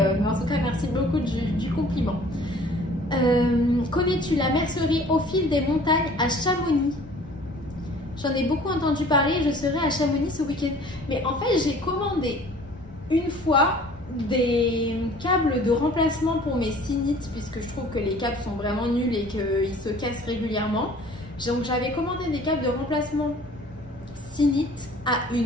mais en tout cas merci beaucoup du compliment. Connais-tu la mercerie au fil des montagnes à Chamonix? J'en ai beaucoup entendu parler, je serai à Chamonix ce week-end. Mais en fait, j'ai commandé une fois des câbles de remplacement pour mes Synites, puisque je trouve que les câbles sont vraiment nuls et qu'ils se cassent régulièrement. Donc j'avais commandé des câbles de remplacement Synites à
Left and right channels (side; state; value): both; normal; correlation 0.50